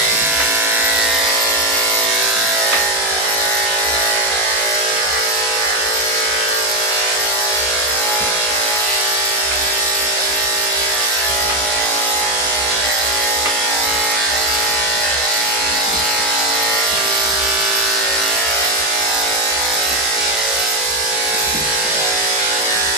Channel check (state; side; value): normal; both; correlation 0.09